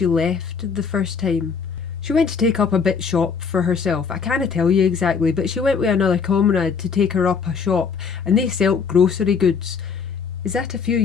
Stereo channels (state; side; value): quieter; right; 5.9 dB